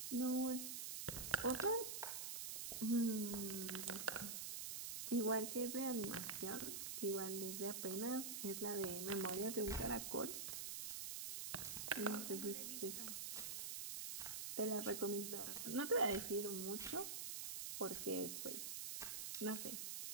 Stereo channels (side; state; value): right; noise; hiss, 4 dB below the sound